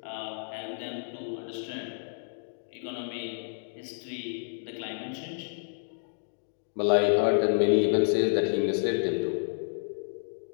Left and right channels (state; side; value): silent; right; digital silence